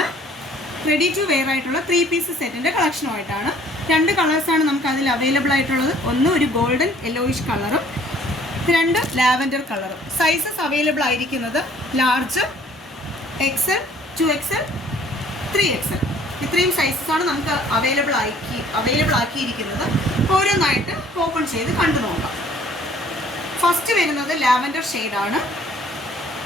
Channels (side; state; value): both; normal; correlation 0.57